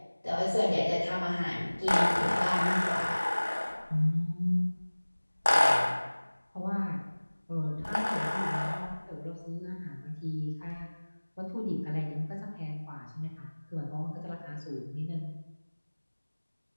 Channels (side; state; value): both; inverted; correlation -1.00